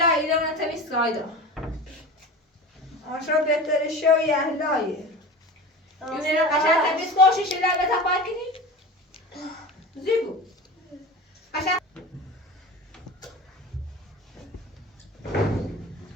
ایران تمیز کایدا آشو بهتره شوی اهلایه یونه قشنگ تمیز کوشی شده به تپای کنی زیبو قشنگ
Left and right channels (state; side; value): normal; both; correlation 0.32